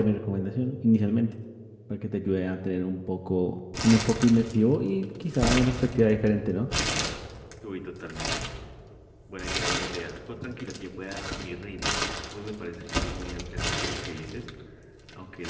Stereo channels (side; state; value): both; identical; correlation 1.00